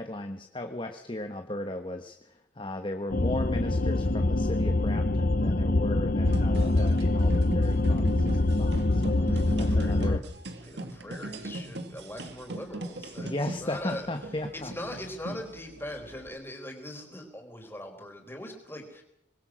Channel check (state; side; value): normal; both; correlation 0.82